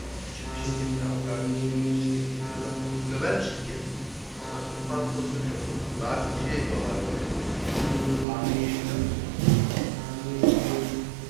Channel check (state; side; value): drops out; left; at 8.2 s